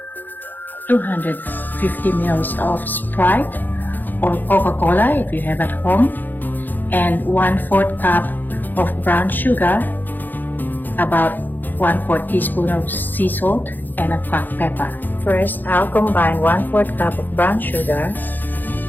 250 ml of Sprite or Coca-Cola if you have at home, and 1/4 cup of brown sugar, about 1/4 teaspoon of sea salt, and a cracked pepper. First, I'll combine 1/4 cup of brown sugar,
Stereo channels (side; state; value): right; late; 0.087 ms